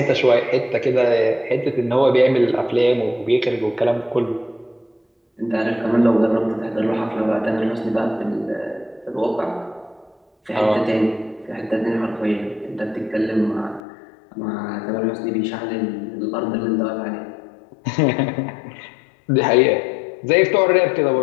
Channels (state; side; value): drops out; right; at 13.8 s